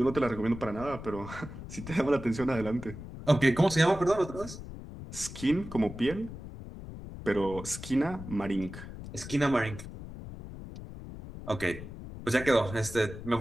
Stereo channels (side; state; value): left; noise; rumble, 12 dB below the sound